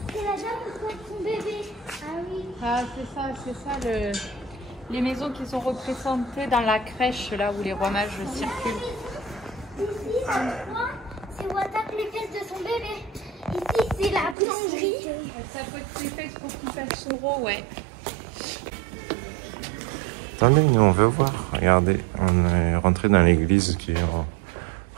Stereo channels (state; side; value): drops out; left; at 14.4 s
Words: c'est la dame qui porte son bébé. Ah oui. Ah c'est ça les maisons qui sont représentées dans la crèche là où les rois mages circulent. Ici, c'est où attaque les fesses de son bébé. Ici, c'est la boulangerie. Ça peut être les fesses pour qu'il fasse son rot, ouais. Attendez, nous on veut voir. Regardez, on est rentré dans l'église qui est en